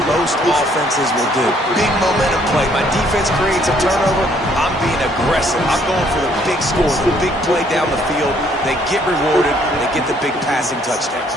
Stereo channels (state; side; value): normal; both; correlation 0.64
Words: most offenses will do. Big momentum play. My defense creates a turnover. I'm being aggressive. I'm going for the big score, the big play down the field. They get rewarded. They get the big passing touchdowns.